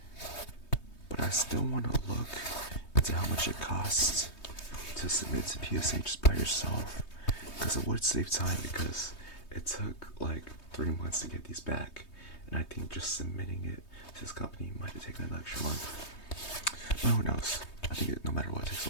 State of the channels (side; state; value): right; late; 3.2 ms